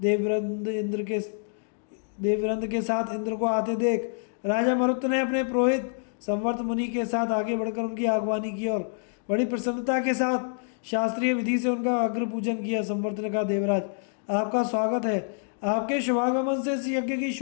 के साथ इंद्र को आते देख राजा मरुत ने अपने पुरोहित संवर्त मुनि के साथ आगे बढ़कर उनकी आगवानी की और बड़ी प्रसन्नता के साथ शास्त्रीय विधि से उनका अग्र पूजन किया। संवर्त ने कहा, देवराज, आपका स्वागत है। आपके शुभागमन से इस यज्ञ की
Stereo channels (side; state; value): right; silent; digital silence